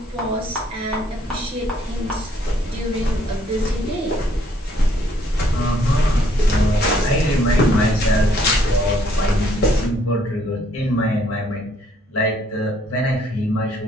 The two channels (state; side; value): normal; both; correlation 0.66